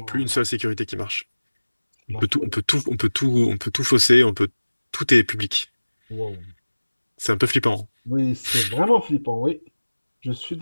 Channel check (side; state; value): both; inverted; correlation -1.00